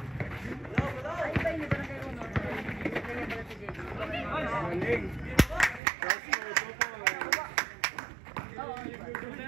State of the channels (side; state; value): left; drops out; at 5.8 s